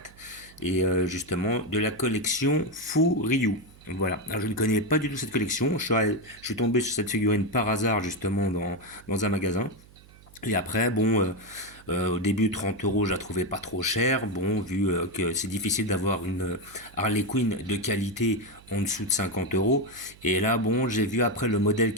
et justement de la collection Fu Ryu. Voilà. Alors, je ne connais pas du tout cette collection. Je suis tombé sur cette figurine par hasard justement dans un magasin. Et après, bon, au début 30 euros, je la trouvais pas trop chère. Bon, vu que c'est difficile d'avoir une Harley Quinn de qualité en dessous de 50 euros. Et là, bon, j'ai vu après le modèle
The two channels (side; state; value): right; noise; hum, 24 dB below the sound